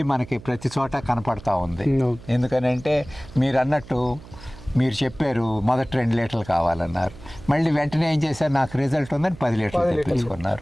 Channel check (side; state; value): right; noise; hum, 18 dB below the sound